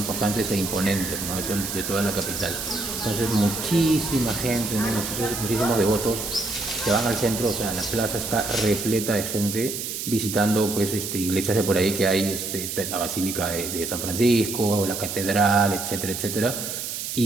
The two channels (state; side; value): noise; right; hiss, 5 dB below the sound